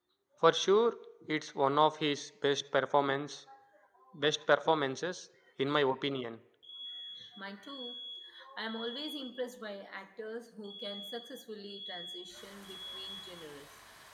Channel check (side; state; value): both; identical; correlation 1.00